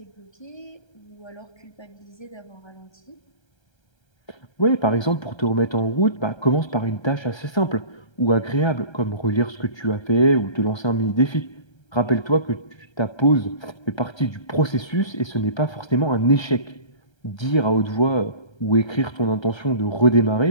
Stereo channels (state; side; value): late; right; 1.3 ms